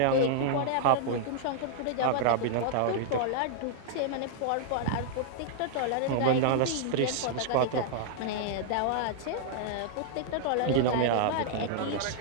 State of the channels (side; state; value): both; different; correlation -0.01